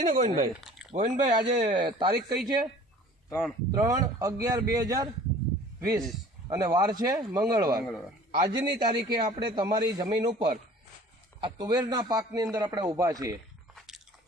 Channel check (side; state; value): both; normal; correlation 0.48